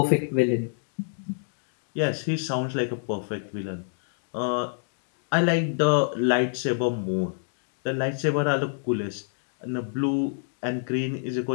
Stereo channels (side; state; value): right; silent; digital silence